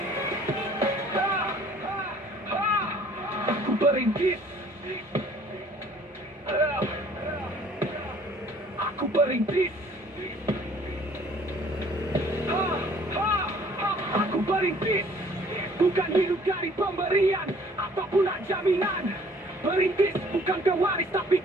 Aku perintis. Aku perintis. Aku perintis, bukan hidup dari pemberian ataupun jaminan. Perintis bukan pewaris, tapi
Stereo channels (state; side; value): normal; both; correlation 0.56